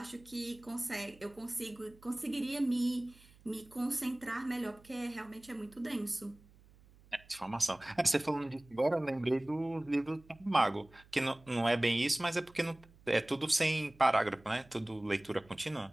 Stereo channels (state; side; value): noise; right; hum, 26 dB below the sound